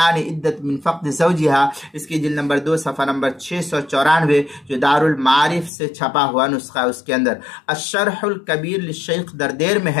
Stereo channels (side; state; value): right; drops out; at 5.7 s